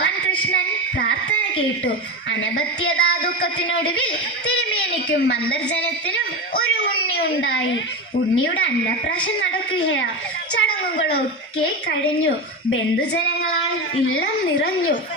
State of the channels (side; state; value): both; normal; correlation 0.19